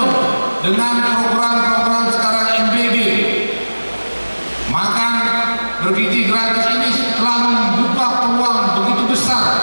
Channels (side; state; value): both; inverted; correlation -1.00